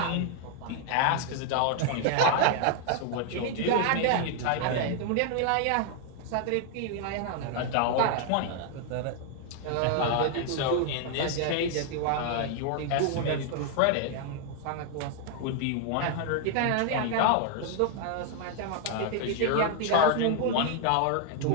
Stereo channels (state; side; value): different; both; correlation 0.00